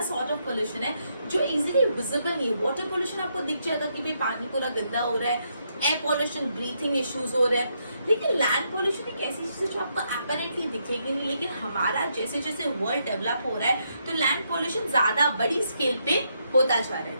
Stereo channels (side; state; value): both; inverted; correlation -0.78